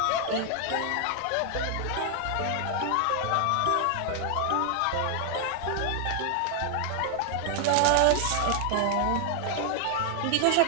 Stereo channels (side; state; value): both; different; correlation 0.00